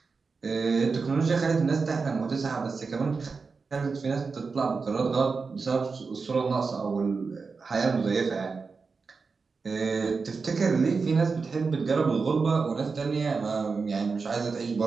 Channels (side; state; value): left; quieter; 4.7 dB